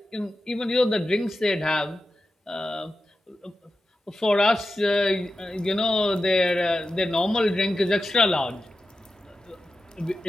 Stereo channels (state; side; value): normal; both; correlation 0.92